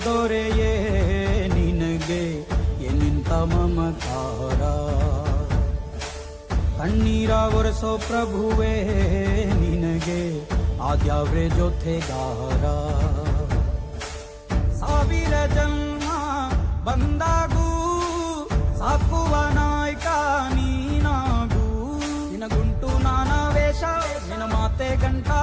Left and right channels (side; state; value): both; identical; correlation 1.00